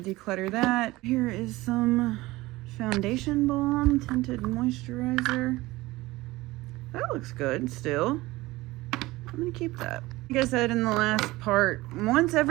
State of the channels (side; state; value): left; quieter; 19.5 dB